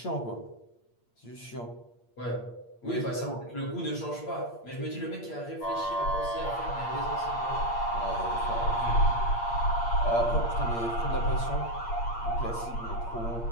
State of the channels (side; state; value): right; late; 8.6 ms